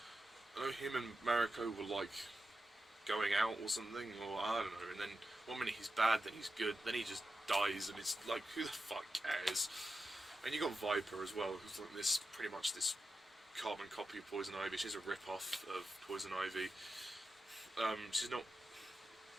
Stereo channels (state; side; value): normal; both; correlation 0.89